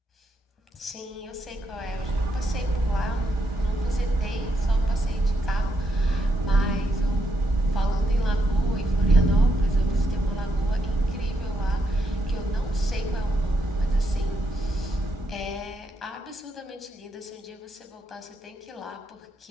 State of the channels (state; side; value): normal; both; correlation 0.79